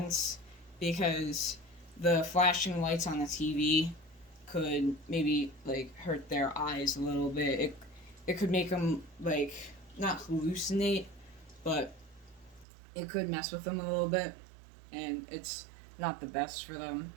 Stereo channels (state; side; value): drops out; left; at 12.7 s